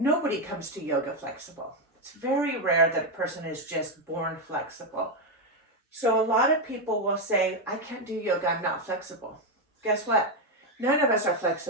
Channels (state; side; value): normal; both; correlation 0.05